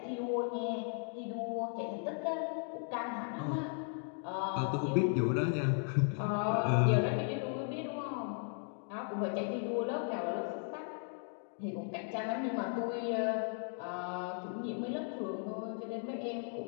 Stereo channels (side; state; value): right; silent; 53 dB below the other